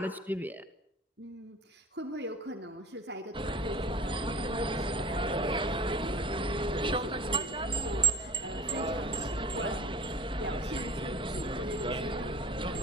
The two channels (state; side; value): normal; both; correlation 0.38